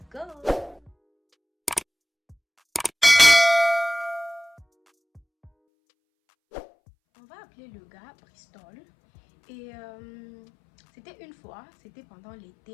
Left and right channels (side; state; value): right; drops out; at 5.5 s